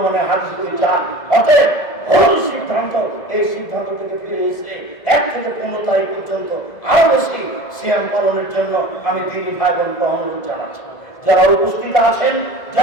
হাদিস চান। অতএব ভুল সিদ্ধান্ত, এই সিদ্ধান্ত থেকে ফিরে এসে 1 থেকে 15 তারিখ পর্যন্ত আরো বেশি সিয়াম পালনের জন্য আমি দিনী ভাই বোনকে অনুরোধ জানাচ্ছি। যারা উপস্থিত আছেন,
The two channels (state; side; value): late; right; 1.8 ms